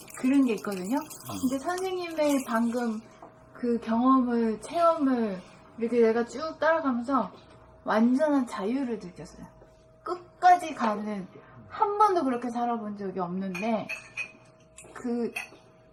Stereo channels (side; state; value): both; identical; correlation 1.00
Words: 그런 게 있거든요. 근데 선생님의 방금 그 경험을 체험을 이렇게 내가 쭉 따라가면서 완전한 자유를 느꼈어요. 끝까지 가는 한 번도 그렇게 살아본 적이 없는데